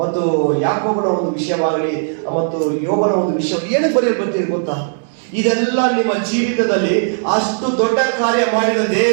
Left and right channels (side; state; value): left; silent; digital silence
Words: ಮತ್ತು ಯಾಕೋಬನ ಒಂದು ವಿಷಯವಾಗಲಿ, ಮತ್ತು ಯೋಬನ ಒಂದು ವಿಷಯ ಏನಕ್ಕೆ ಬರೆಯಲ್ಪಟ್ಟಿದೆ ಗೊತ್ತಾ? ಇದೆಲ್ಲ ನಿಮ್ಮ ಜೀವಿತದಲ್ಲಿ ಅಷ್ಟು ದೊಡ್ಡ ಕಾರ್ಯ ಮಾಡಿದ